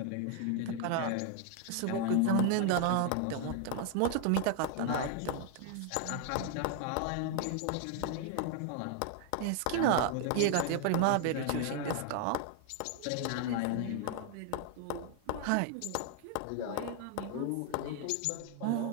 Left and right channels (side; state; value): both; different; correlation 0.00